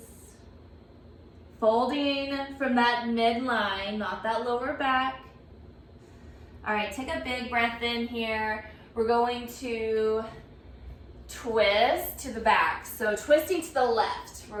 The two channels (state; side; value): identical; both; correlation 1.00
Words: Folding from that midline, not that lower back. All right, take a big breath in here. We're going to twist to the back. So twisting to the left.